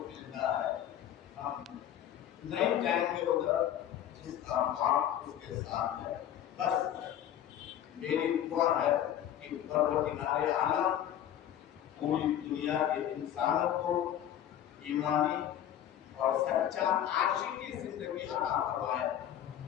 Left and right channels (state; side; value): quieter; right; 10.9 dB